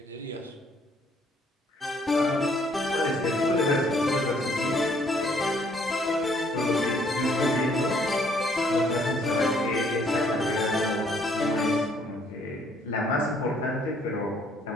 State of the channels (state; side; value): normal; both; correlation 0.65